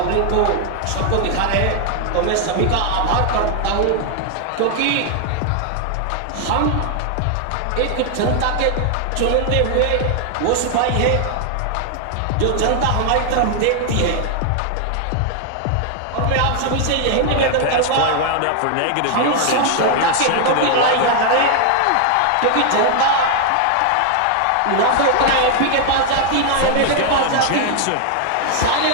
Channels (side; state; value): both; different; correlation 0.00